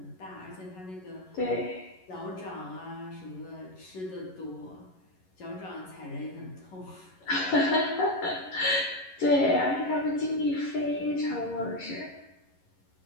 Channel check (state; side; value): late; right; 11 ms